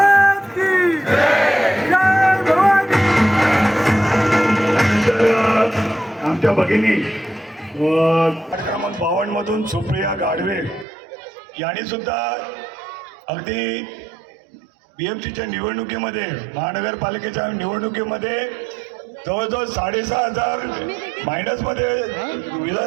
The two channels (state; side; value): drops out; left; at 10.9 s